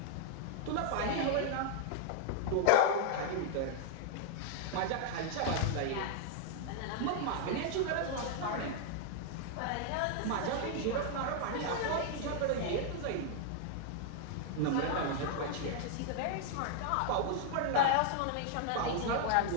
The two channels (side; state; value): both; different; correlation 0.00